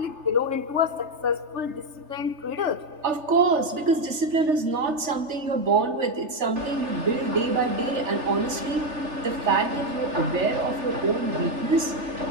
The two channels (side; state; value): left; late; 3.4 ms